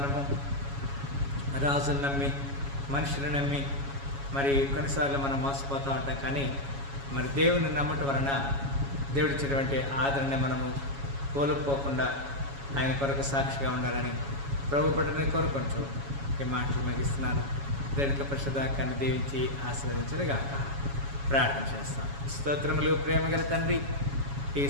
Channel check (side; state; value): left; late; 7.2 ms